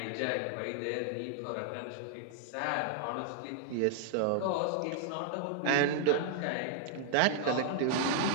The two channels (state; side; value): different; both; correlation -0.01